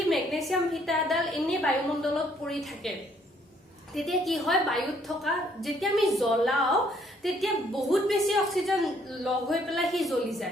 মেগনেছিয়াম ফিটাৰডাল এনে বায়ুমণ্ডলত পৰি থাকে তেতিয়া কি হয়, বায়ুত থকা যেতিয়া আমি জ্বলাও তেতিয়া বহুত বেছি অক্সিজেন লগ হৈ পেলাই হি জ্বলি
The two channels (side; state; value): both; normal; correlation 0.66